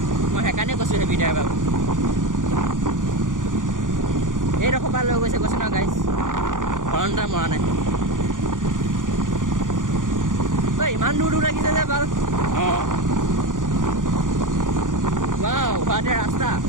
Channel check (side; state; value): left; late; 0.88 ms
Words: মই সেইকাৰণে কৈছোঁ heavy driver এইডোখৰ পৰা লৈ গৈছে কৈছে ন guys হৰণটা মৰা নাই ঐ ইমান দূৰ লাগিছে যে ভাল অঁ ৱাও হোৱাতে ৰাস্তা